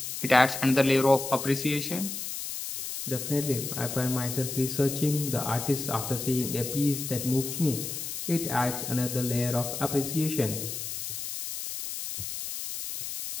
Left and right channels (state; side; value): noise; left; hiss, 6 dB below the sound